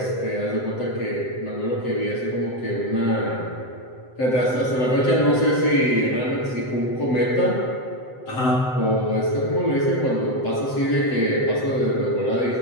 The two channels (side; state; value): right; late; 7.8 ms